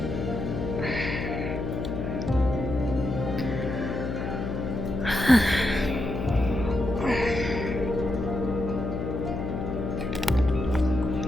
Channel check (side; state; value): left; noise; hum, 3 dB below the sound